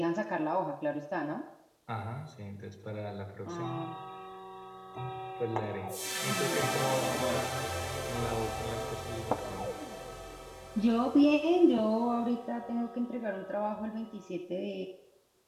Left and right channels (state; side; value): identical; both; correlation 1.00